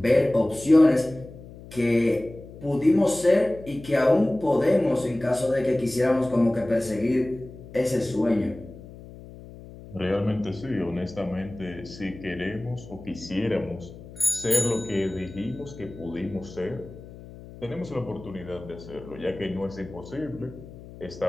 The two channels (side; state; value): left; noise; hum, 17 dB below the sound